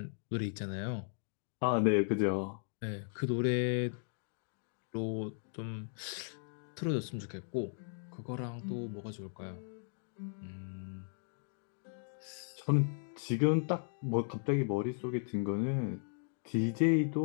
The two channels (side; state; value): right; silent; digital silence